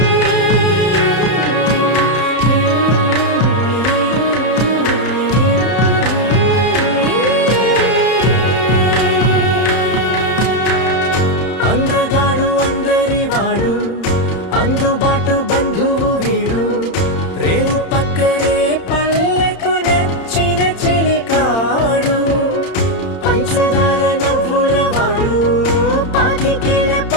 అందగాడు అందరి వాడు అందుబాటు బంధువు వీడు రేవు పక్కరే పల్లెకు నచ్చిన చెలికాడు పంచదార నవ్వుల వాడు పాతికేల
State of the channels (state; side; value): late; right; 31 ms